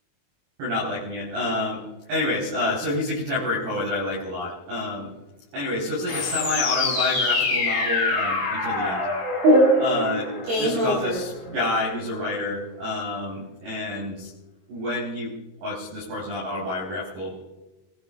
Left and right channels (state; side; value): late; left; 22 ms